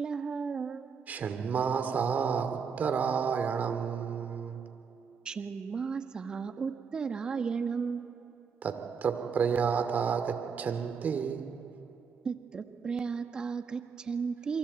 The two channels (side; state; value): left; quieter; 6.0 dB